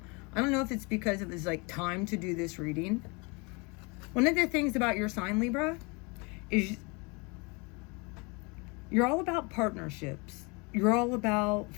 I don't know if it's because it was like time to do this reading. One of the things about your sign, Libra, is you're all about partnerships. You're all about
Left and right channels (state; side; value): quieter; right; 29.5 dB